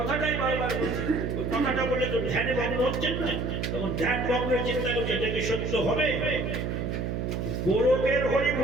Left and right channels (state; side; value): noise; right; hum, 2 dB below the sound